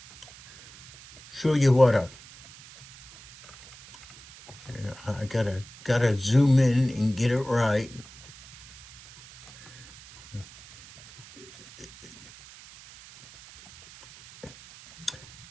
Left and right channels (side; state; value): right; noise; hiss, 20 dB below the sound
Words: show you what I gotta zoom in and get it right.